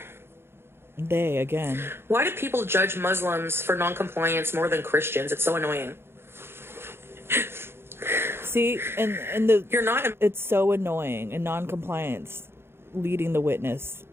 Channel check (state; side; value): late; left; 0.11 ms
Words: They, again. Why do people judge Muslims for non-compliance more than Christians? It's so annoying. See, You're not. it's so annoying, and non-compliance leading the witness,